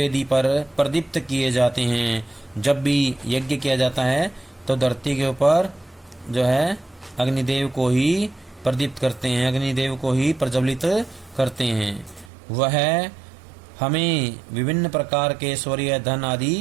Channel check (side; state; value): left; drops out; at 12.3 s